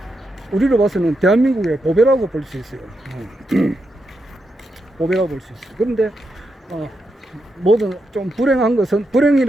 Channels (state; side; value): normal; both; correlation 0.84